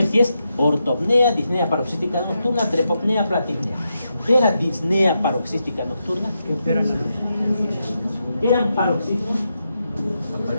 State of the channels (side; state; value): both; inverted; correlation -0.85